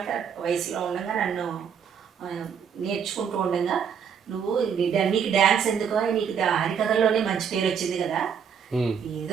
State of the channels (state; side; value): quieter; left; 7.3 dB